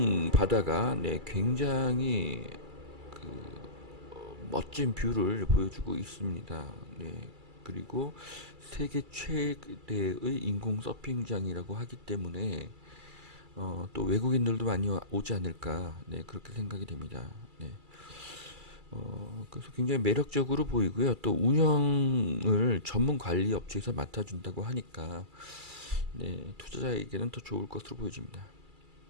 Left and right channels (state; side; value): late; left; 2.3 ms